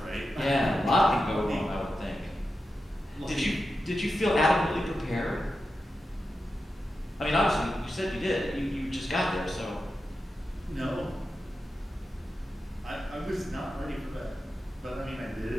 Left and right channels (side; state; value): both; normal; correlation 0.91